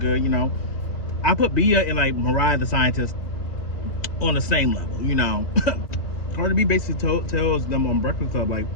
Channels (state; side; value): late; right; 2.4 ms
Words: you know. I put Bia and like Mariah the Scientist on the same level, you know. Cardi B basically tells them on Breakfast Club, like,